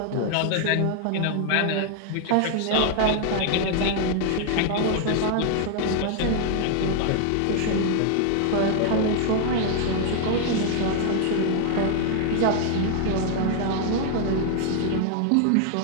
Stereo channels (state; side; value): different; both; correlation 0.00